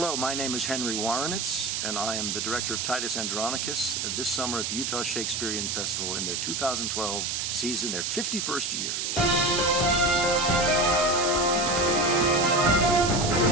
my name is Henry Woronicz, and I am the director of Titus Andronicus this summer at the Utah Shakespeare Festival in their 2012 season, their 51st year.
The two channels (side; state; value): right; noise; hiss, 1 dB below the sound